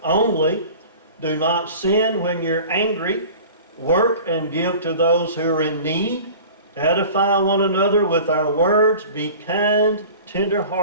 only. Do not sin when you're angry. Work and give to those who are in need. Edify one another with our words. Be kind,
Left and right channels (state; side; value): inverted; both; correlation -0.41